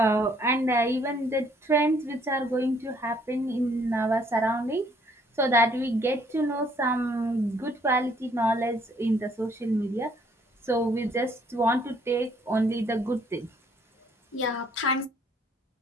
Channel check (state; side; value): normal; both; correlation 0.64